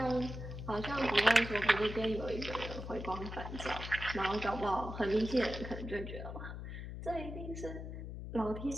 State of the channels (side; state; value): left; noise; hum, 8 dB below the sound